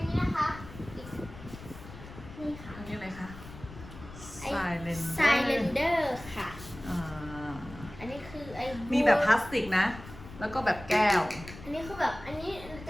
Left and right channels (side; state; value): left; noise; rumble, 15 dB below the sound